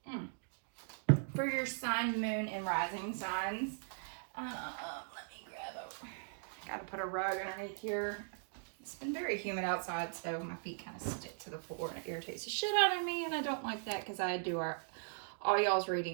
for your sun, moon, and rising signs. Let me grab I gotta put a rug underneath here. It's been very humid outside, so my feet kind of stick to the floor, and it irritates the shit out of me, and I don't like that because I do all y'all's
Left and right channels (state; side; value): silent; left; digital silence